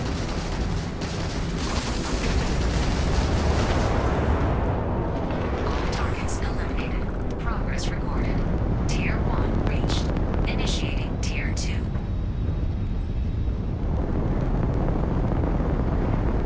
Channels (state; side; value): identical; both; correlation 1.00